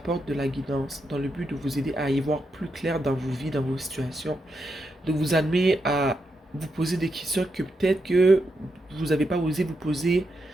de la guidance dans le but de vous aider à y voir plus clair dans vos vies, dans vos situations, de vous amener à vous poser des questions que peut-être que vous n'avez pas osé vous poser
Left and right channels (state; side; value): normal; both; correlation 0.83